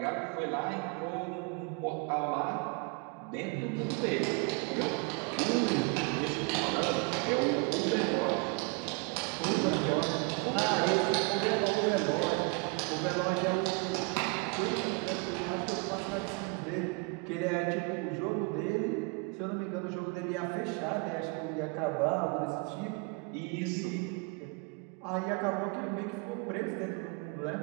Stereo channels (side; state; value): left; quieter; 31.2 dB